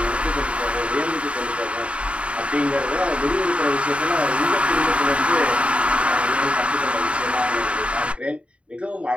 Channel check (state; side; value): late; left; 0.061 ms